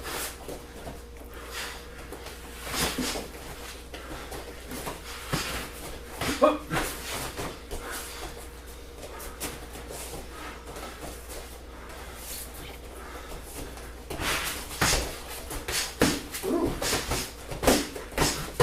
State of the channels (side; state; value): both; identical; correlation 1.00